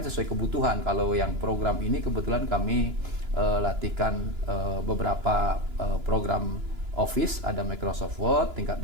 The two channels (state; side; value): late; left; 2.9 ms